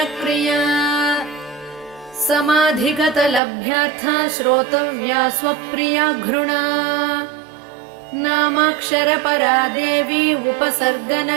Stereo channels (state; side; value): drops out; left; at 3.4 s